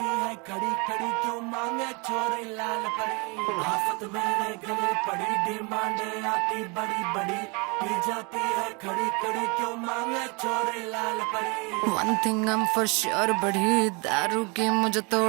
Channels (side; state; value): left; quieter; 30.5 dB